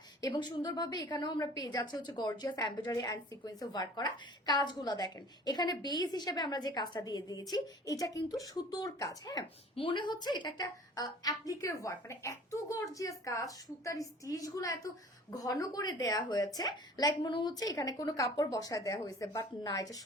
এবং সুন্দরভাবে এখানেও আমরা পেয়ে যাচ্ছি হচ্ছে গর্জিয়াস এমব্রয়ডারি অ্যান্ড সিকোয়েন্সে ওয়ার্ক করা। কাজগুলো দেখেন, এখানে বেস হিসেবে আমরা যে কাজটা দিয়ে দিয়েছি, এটা কিন্তু সুতোর কাজ। হ্যাঁ, মনে হচ্ছে এটা একটা অ্যাপ্লিকের ওয়ার্ক, মানে এত গর্জিয়াস কাজ, সুতার স্টিচ গুলো এত ঘন করে দেয়া হয়েছে, লাইক মনে হচ্ছে এখানে কোনো কাপড় বসায় দেওয়া হয়েছে, বাট না, এটা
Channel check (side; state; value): both; normal; correlation 0.47